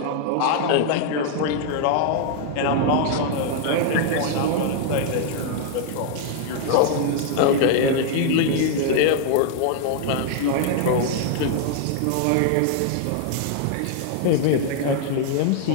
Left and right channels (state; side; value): different; both; correlation 0.00